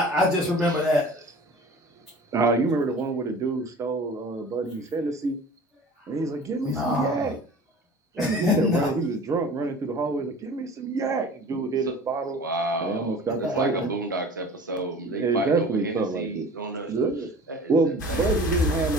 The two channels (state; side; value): normal; both; correlation 0.43